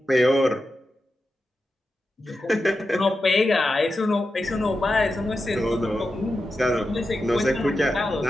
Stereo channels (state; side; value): normal; both; correlation 0.90